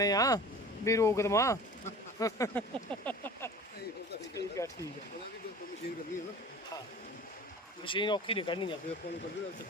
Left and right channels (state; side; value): normal; both; correlation 0.40